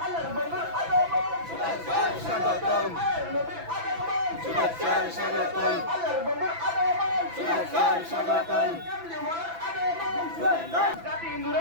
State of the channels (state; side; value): late; left; 6.0 ms